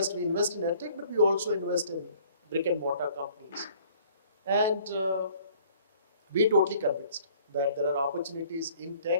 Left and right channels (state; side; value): inverted; both; correlation -0.55